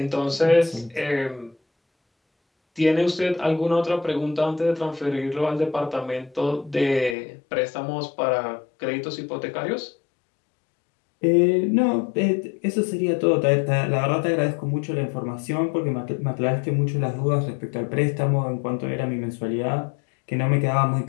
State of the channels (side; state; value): right; drops out; at 7.2 s